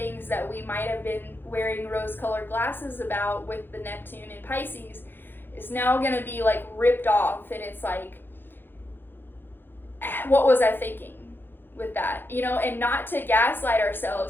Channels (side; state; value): right; late; 0.099 ms